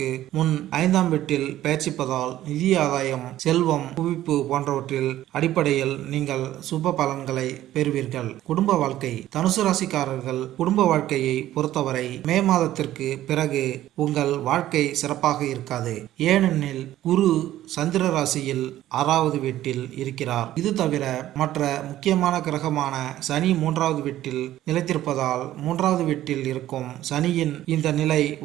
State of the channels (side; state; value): left; quieter; 13.7 dB